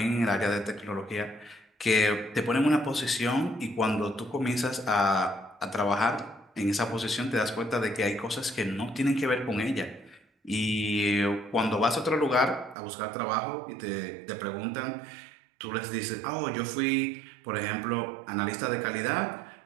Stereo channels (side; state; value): left; drops out; at 12.8 s